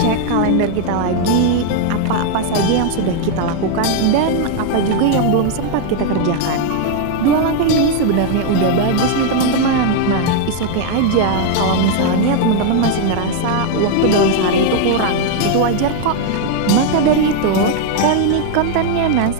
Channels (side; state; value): both; different; correlation 0.00